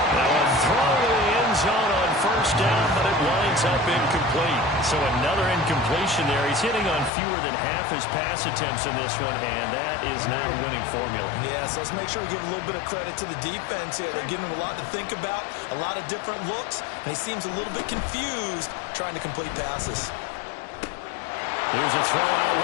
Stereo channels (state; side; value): drops out; right; at 7.1 s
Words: Now a throw to the end zone on 1st down, but it winds up incomplete. So another incompletion there. He's hitting on fewer than half his pass attempts in this one, and that is not a winning formula. Yeah, so let's make sure we give a little bit of credit to the defense here. They're giving him a lot to think about, a lot of different looks, and he seems a little bit confused trying to complete passes. Here's a throw out